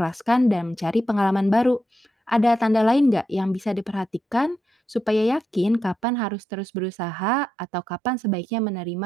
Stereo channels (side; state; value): left; drops out; at 6.1 s